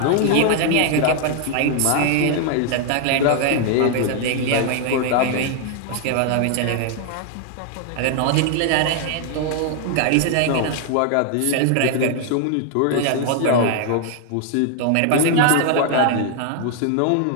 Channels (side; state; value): both; different; correlation 0.00